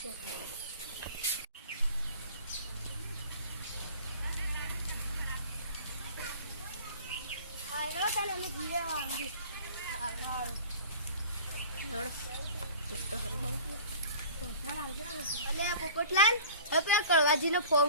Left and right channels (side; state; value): both; inverted; correlation -0.43